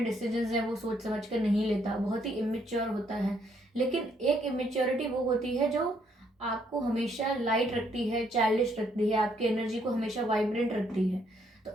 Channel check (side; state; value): both; normal; correlation 0.71